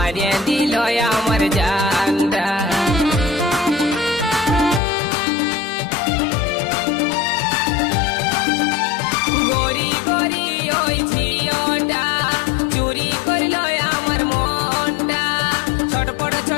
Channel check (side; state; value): right; drops out; at 4.8 s